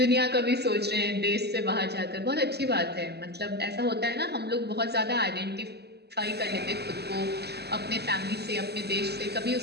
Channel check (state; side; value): late; left; 0.48 ms